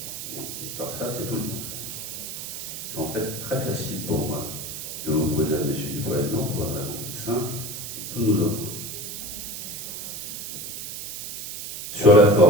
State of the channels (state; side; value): noise; right; hiss, 7 dB below the sound